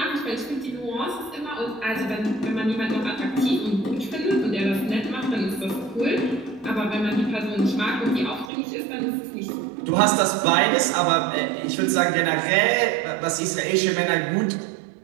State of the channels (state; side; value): drops out; left; at 8.5 s